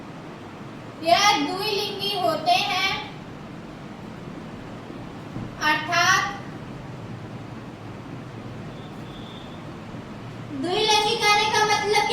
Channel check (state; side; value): identical; both; correlation 1.00